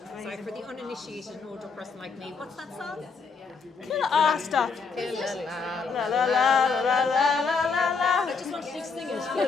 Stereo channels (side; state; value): right; quieter; 5.0 dB